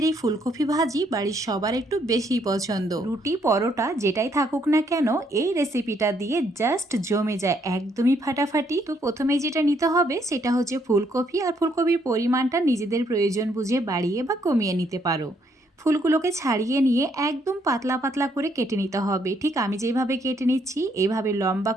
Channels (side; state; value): both; normal; correlation 0.71